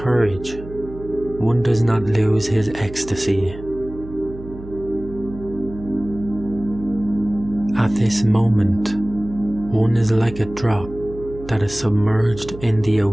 one does not lose his ecstasy. At this moment, one is like a drop that is submerged in the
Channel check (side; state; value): right; noise; hum, 14 dB below the sound